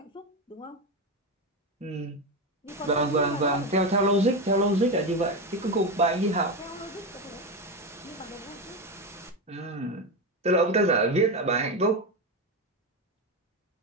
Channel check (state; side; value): normal; both; correlation 0.15